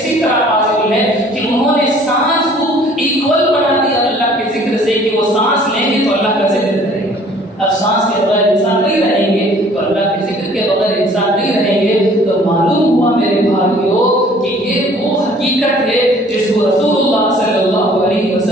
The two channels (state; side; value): normal; both; correlation 0.55